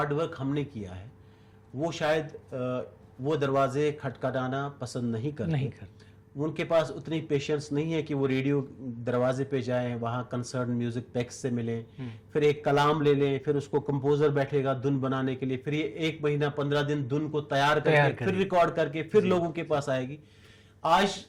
वर्क हमने किया है वो शायद वो दरवाजे खटखटाना पसंद नहीं करते। उनके पास उतनी पेशेंस नहीं है कि वो रेडियो दरवाजे पे जाएं, वहाँ कंसर्न म्यूज़िक पैक्स से मिलें, फिर एक कलाम ले लें, फिर उसको कंपोज़र बैठेगा धुन बनाने के लिए, फिर ये 1 महीना 15 दिन धुन को तैयार करके फिर रिकॉर्ड करके फिर लोगों के पास आएगी। आज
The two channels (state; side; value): identical; both; correlation 1.00